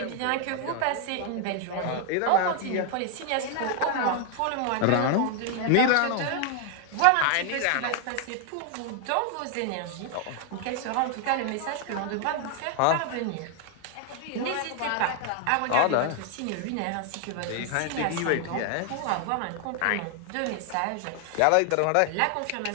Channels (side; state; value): both; different; correlation 0.00